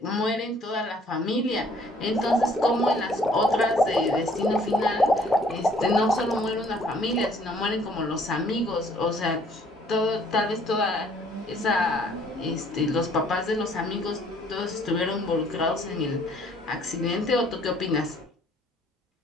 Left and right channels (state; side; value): normal; both; correlation 0.60